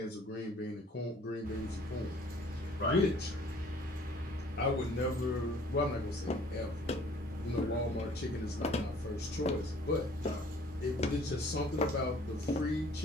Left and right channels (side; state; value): both; normal; correlation 0.54